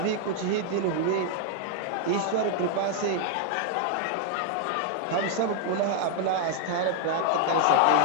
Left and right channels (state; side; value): different; both; correlation 0.00